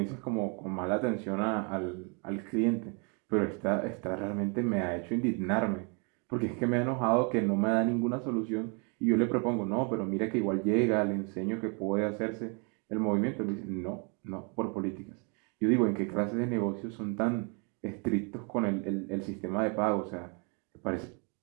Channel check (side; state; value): left; quieter; 35.5 dB